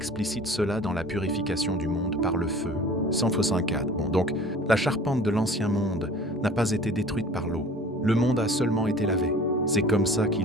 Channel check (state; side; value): normal; both; correlation 0.45